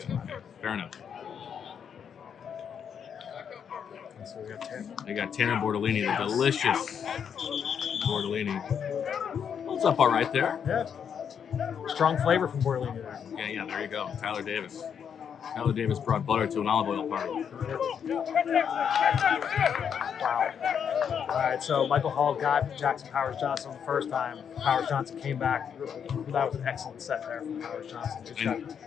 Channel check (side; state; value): right; quieter; 7.6 dB